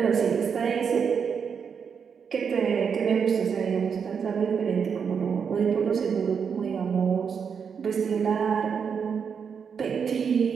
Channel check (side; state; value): left; quieter; 6.6 dB